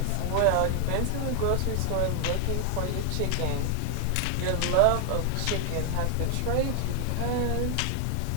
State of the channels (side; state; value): both; different; correlation 0.00